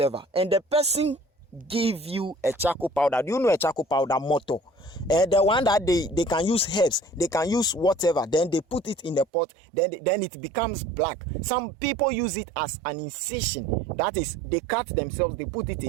and the person give you a charcoal powder. Do you know a charcoal powder motor? The one that they can use herbs, they can use whatever, then they put it in the pot, then it becomes black. Some people use it as an incision. That is, they cut themselves, they put it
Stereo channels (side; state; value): left; drops out; at 9.2 s